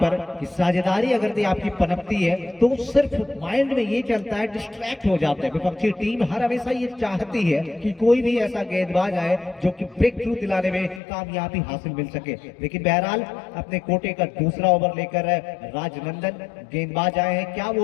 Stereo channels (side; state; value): right; drops out; at 11.0 s